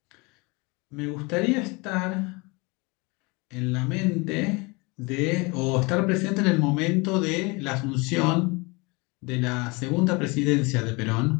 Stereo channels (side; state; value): right; quieter; 27.2 dB